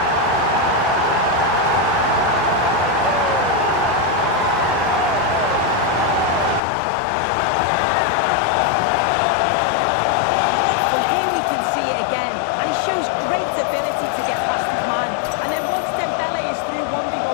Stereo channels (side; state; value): right; drops out; at 6.6 s